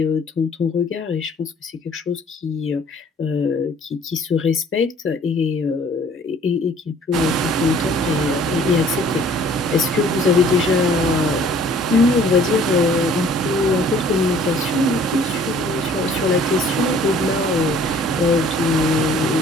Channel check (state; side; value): normal; both; correlation 0.54